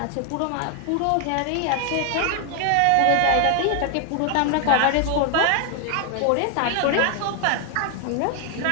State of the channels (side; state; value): both; different; correlation 0.00